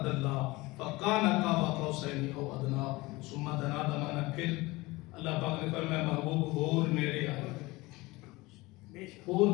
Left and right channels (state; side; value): quieter; right; 21.7 dB